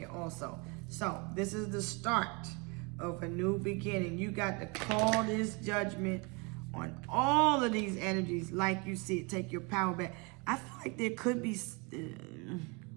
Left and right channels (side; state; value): left; quieter; 30.0 dB